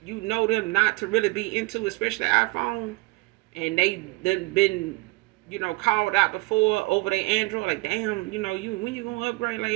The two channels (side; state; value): left; quieter; 24.9 dB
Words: them not to really be into, especially iPhone, and they done been, called out before over their Android, like damn, you when you gonna upgrade? Like